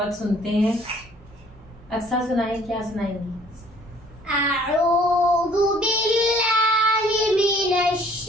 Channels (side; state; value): both; normal; correlation 0.57